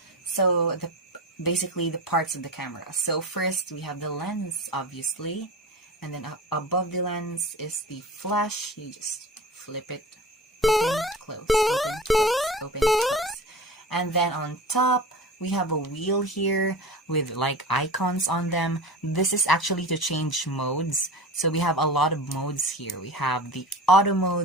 So basically the parts of the camera. So first we have the lens, obviously, and then above the lens is the flash. You just flip it, open, close, open, close, open, close. And then on top We have a wheel here with like icons on them. This is actually to change modes. So we have a lot of modes here. We have the auto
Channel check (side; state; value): both; normal; correlation 0.33